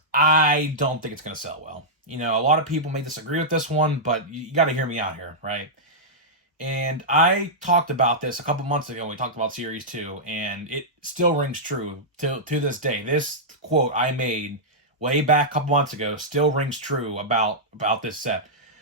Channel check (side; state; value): both; normal; correlation -0.10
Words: I don't think it's gonna sell well. A lot of people may disagree with this one, but you got to hear me out here, right? And I talked about this a couple months ago when we talked about Series 2, and it still rings true to this day. This quote I made way back a couple months ago still rings true about this set.